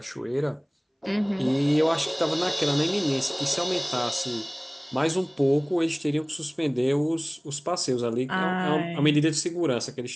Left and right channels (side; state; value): both; identical; correlation 1.00